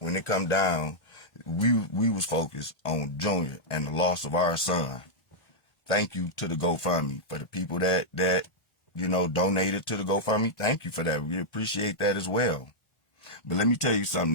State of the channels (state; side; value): late; right; 1.4 ms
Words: it come down, we was focused on Junior and the loss of our son. Thank you to the GoFundMe for the people that donated to the GoFundMe. Thank you for that. We appreciate that as well. But let me tell you something.